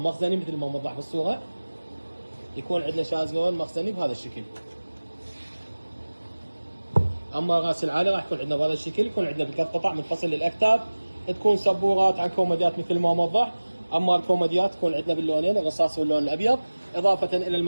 مخزني مثل ما موضح بالصوره. يكون عندنا شازلون مخزني بهذا الشكل. اما راس العالي راح يكون عندنا بهذا الشكل، يكون عندنا بثلاث قطع منفصل للاكتاف، تكون سبورات عن كوميديات مثل ما موضح. اما الكوميديات تكون عندنا باللونين الرصاص واللون الابيض، اضافه الى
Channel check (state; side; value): inverted; both; correlation -1.00